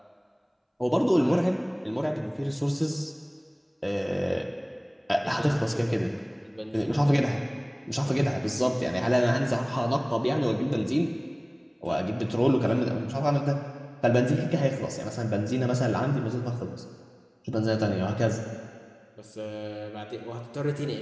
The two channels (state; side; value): identical; both; correlation 1.00